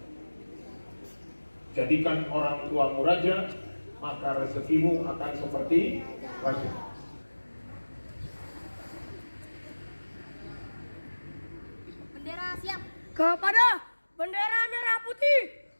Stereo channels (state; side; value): inverted; both; correlation -1.00